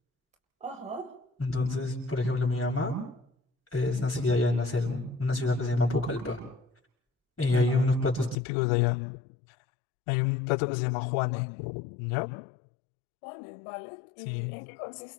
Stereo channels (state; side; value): drops out; right; at 8.3 s